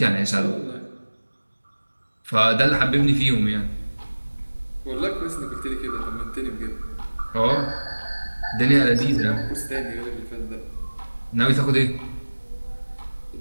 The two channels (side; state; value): both; inverted; correlation -1.00